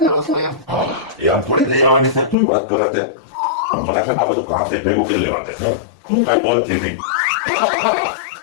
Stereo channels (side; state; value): right; drops out; at 2.4 s